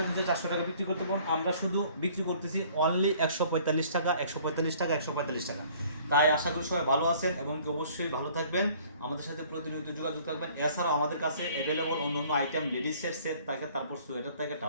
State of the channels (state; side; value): inverted; both; correlation -0.55